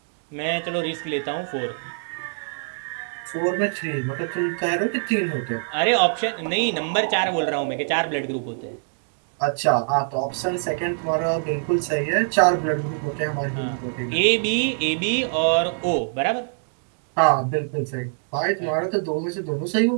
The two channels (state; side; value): silent; left; digital silence